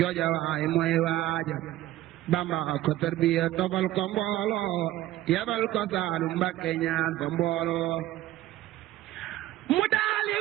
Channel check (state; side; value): quieter; left; 14.8 dB